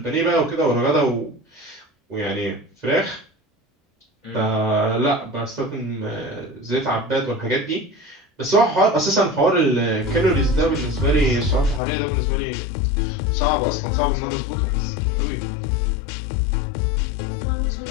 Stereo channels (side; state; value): right; drops out; at 11.8 s